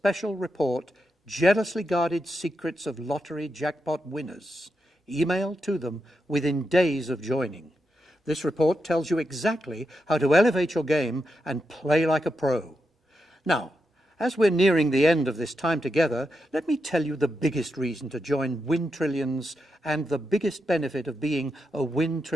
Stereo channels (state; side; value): normal; both; correlation 0.86